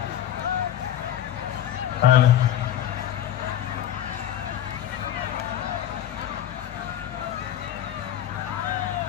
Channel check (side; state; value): right; quieter; 11.2 dB